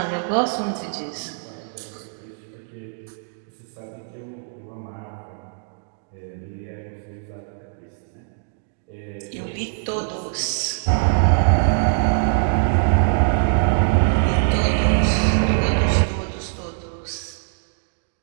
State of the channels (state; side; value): silent; left; digital silence